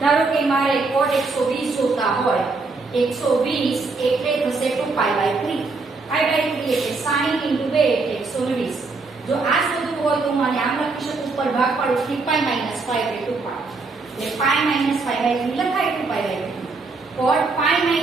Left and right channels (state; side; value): quieter; left; 3.9 dB